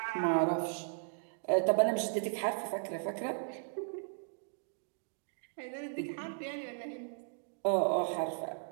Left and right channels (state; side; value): silent; left; digital silence